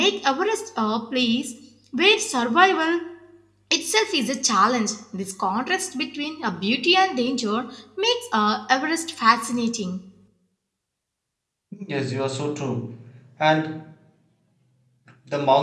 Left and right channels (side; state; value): both; identical; correlation 1.00